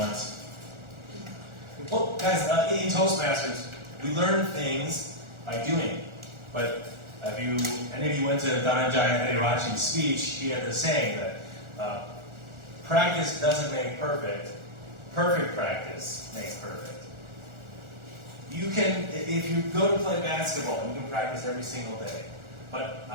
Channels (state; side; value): late; left; 1.4 ms